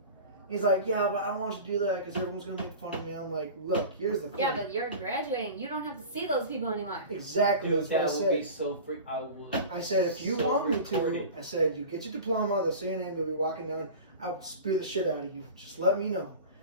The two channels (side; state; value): both; inverted; correlation -0.35